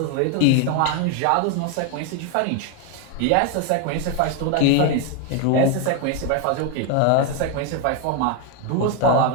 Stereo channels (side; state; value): both; different; correlation 0.01